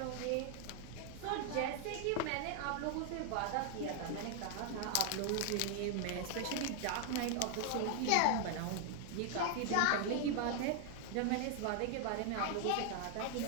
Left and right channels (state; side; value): different; both; correlation 0.00